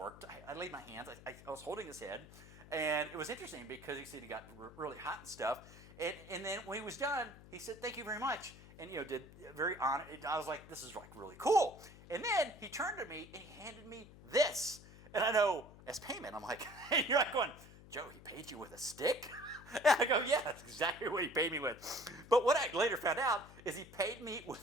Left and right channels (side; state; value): left; noise; hum, 19 dB below the sound